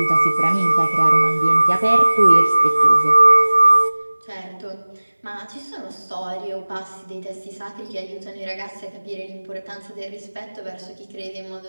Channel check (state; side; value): inverted; both; correlation -1.00